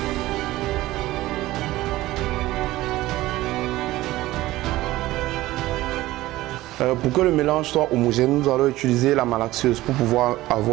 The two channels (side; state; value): left; quieter; 17.1 dB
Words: Pour que le mélange soit homogène, nous allons utiliser la malaxeuse pour pouvoir